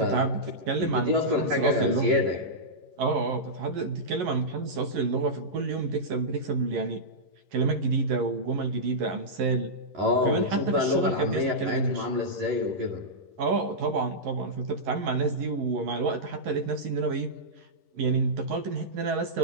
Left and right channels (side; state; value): left; late; 11 ms